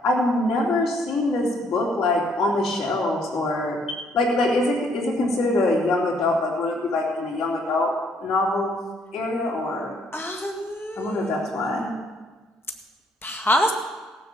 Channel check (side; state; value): both; normal; correlation 0.67